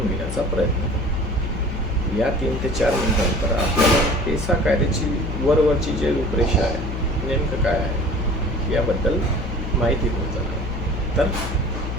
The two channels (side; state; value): left; noise; hum, 5 dB below the sound